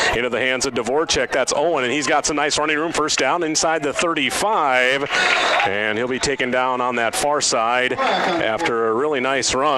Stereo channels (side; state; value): both; identical; correlation 1.00